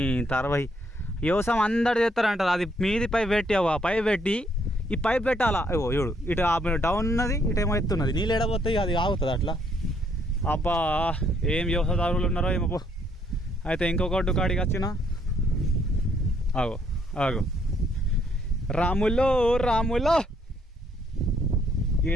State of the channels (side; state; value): both; normal; correlation 0.70